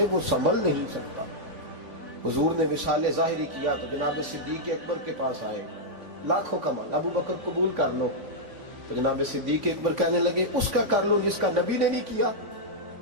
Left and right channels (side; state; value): left; late; 3.5 ms